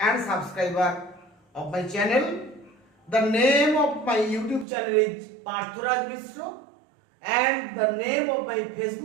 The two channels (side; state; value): left; drops out; at 4.7 s